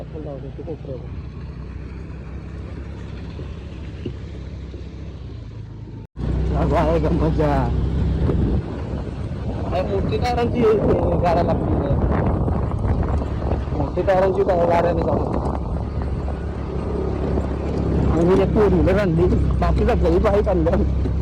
लावतो ते कोपऱ्यावर आहे का मजा मोठी टायरांची गाड्या लागली मोठी टायरांची गाड्याने जाऊ आणि एक फोर व्हीलर आणली बाकी सगळी बाईक आणल्या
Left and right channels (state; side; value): identical; both; correlation 1.00